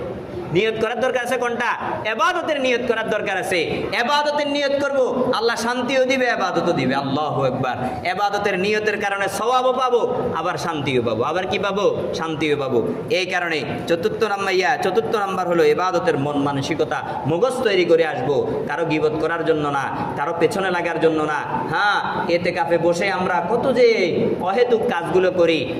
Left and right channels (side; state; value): both; identical; correlation 1.00